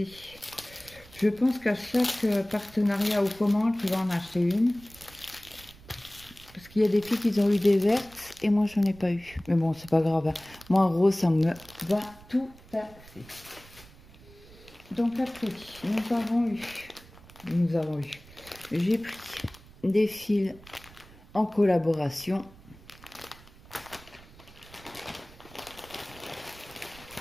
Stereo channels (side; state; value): right; noise; rumble, 22 dB below the sound